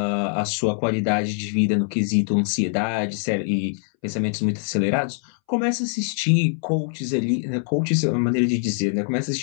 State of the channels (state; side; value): silent; right; 63 dB below the other